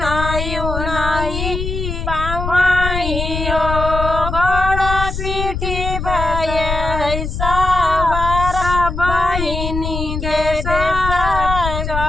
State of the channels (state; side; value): noise; left; rumble, 4 dB below the sound